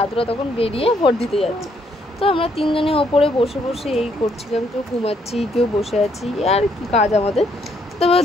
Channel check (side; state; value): both; normal; correlation 0.71